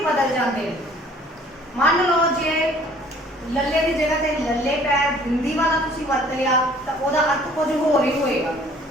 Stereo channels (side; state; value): both; normal; correlation 0.55